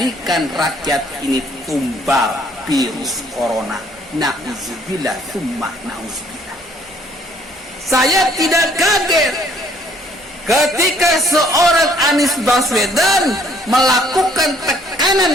rakyat ini tumbal virus corona. Na'udzubillah, summa na'udzubillah. Saya tidak kaget ketika seorang Anies Baswedan melakukan tekanan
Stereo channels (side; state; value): both; normal; correlation 0.61